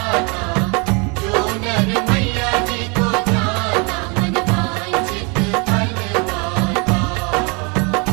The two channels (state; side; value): quieter; left; 31.5 dB